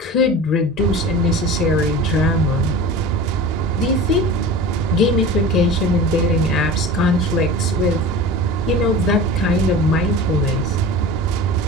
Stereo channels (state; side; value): normal; both; correlation 0.35